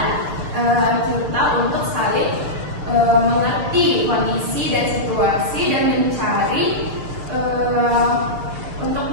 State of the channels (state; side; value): late; left; 6.6 ms